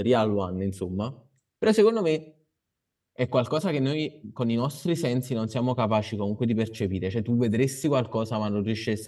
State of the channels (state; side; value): identical; both; correlation 1.00